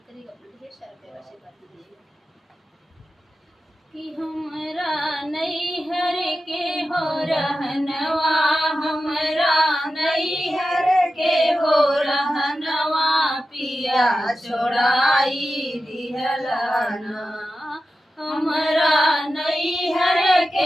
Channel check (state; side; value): normal; both; correlation 0.92